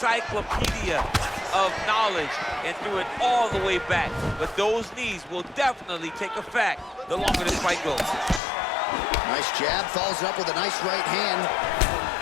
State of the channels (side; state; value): right; drops out; at 8.4 s